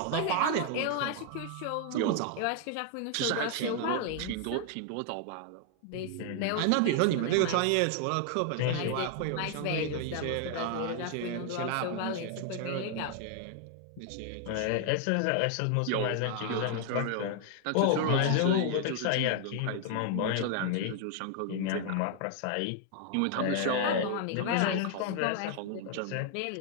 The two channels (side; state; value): both; different; correlation 0.00